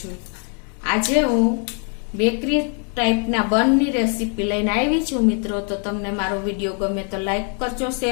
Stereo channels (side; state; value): right; quieter; 40.0 dB